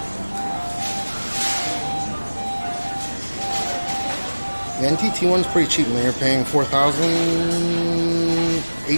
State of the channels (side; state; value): both; inverted; correlation -1.00